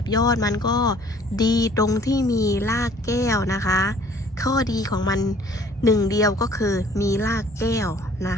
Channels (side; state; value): both; normal; correlation 0.55